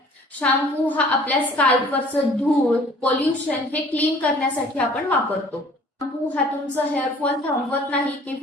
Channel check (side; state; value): both; normal; correlation 0.52